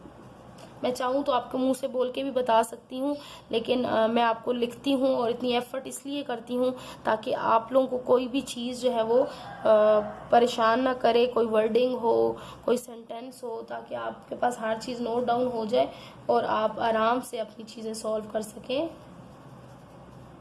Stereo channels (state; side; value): identical; both; correlation 1.00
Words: मैं चाहूँ तो आपके मुंह से बोल के भी बता सकती हूँ, लेकिन मैं आपको लिखती हूँ और इतनी एफर्ट इसलिए करती हूँ ताकि आप लोगों को कोई भी चीज़ जो है वो परेशान ना करे, कोई वर्डिंग हो, कोई सेंटेंस हो, ताकि आपके पास हर चीज़ नोट डाउन हो जाए और आप आराम से अपनी चीज़ें सॉल्व कर सकें।